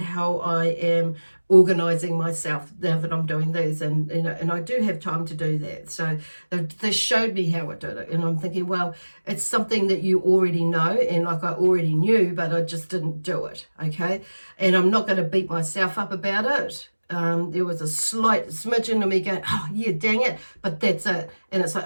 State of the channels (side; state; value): both; inverted; correlation -1.00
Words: I am organizing myself now that I'm doing these, and I do have time to do that. So they showed me how I did it, and I'm thinking, well, it's something that you already know, and like I already knew, but I just didn't do it, okay? And I'm not going to beat myself up about it. There was a slight smidgen of me going, oh yeah, dang it, but that's it. And it's